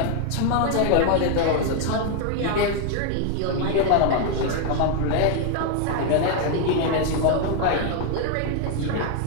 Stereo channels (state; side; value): different; both; correlation 0.00